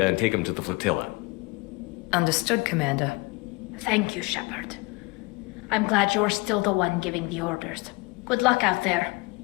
and take him to the flotilla. Understood, Commander. Thank you, Shepard. I'm glad you're still the one giving the orders. Good luck out there.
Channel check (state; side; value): quieter; right; 26.4 dB